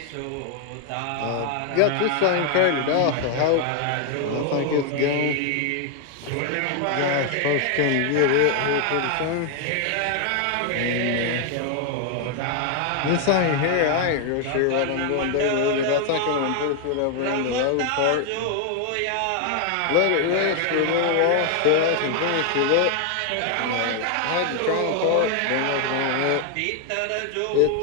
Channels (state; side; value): different; both; correlation 0.00